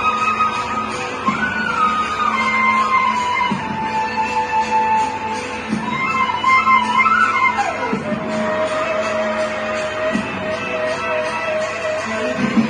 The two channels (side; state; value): both; identical; correlation 1.00